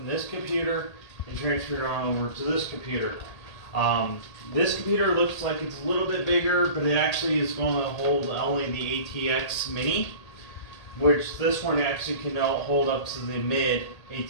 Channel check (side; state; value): right; late; 1.8 ms